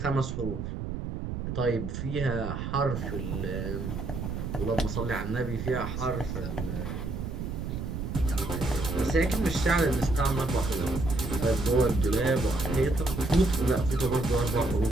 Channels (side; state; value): right; noise; rumble, 5 dB below the sound